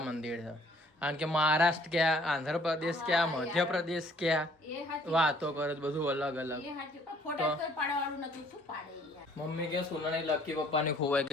મંદિર છે. કારણ કે મહારાષ્ટ્ર ક્યાં, આંધ્રપ્રદેશ ક્યાં, મધ્યપ્રદેશ ક્યાં, વાતો કરે બધું અલગ અલગ. મમ્મી કે સોનાની લકી પપ્પાની ખોવાઈ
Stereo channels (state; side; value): normal; both; correlation 0.59